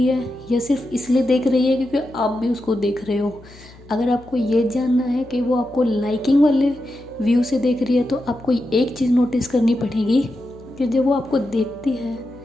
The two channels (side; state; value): left; noise; hum, 23 dB below the sound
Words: है या सिर्फ इसलिए देख रही है क्योंकि आप भी उसको देख रहे हो। अगर आपको ये जानना है कि वो आपको लाइकिंग वाले व्यू से देख रही है तो आपको एक चीज़ नोटिस करनी पड़ेगी कि जब वो आपको देखती है